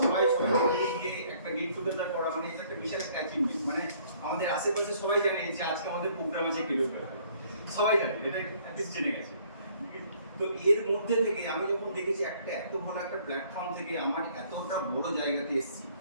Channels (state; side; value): inverted; both; correlation -0.61